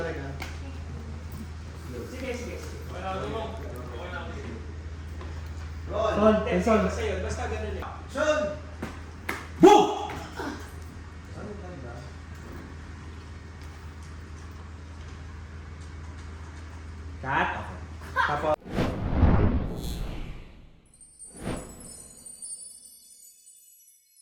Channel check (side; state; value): both; identical; correlation 1.00